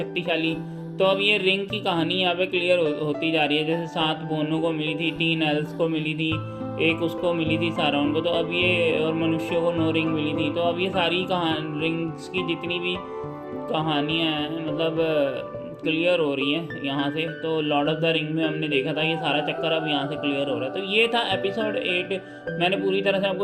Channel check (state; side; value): identical; both; correlation 1.00